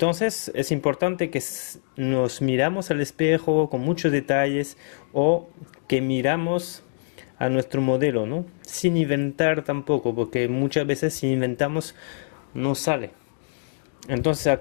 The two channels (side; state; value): right; silent; digital silence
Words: es importante que nos miramos al espejo con muchos detalles o que miramos a nuestro modelo, ¿no? Sin inventar tampoco, porque muchas veces si inventamos no sale. Entonces